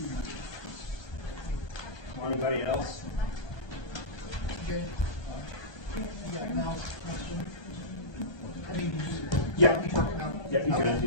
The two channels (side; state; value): right; late; 1.2 ms